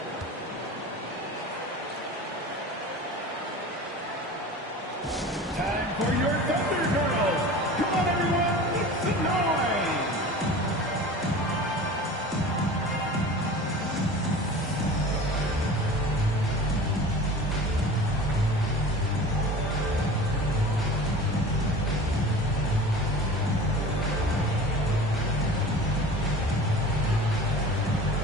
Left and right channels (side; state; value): both; normal; correlation 0.37